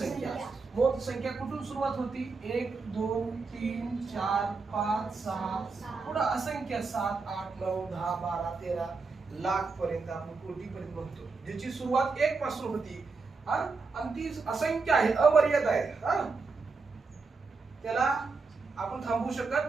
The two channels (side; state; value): left; quieter; 4.3 dB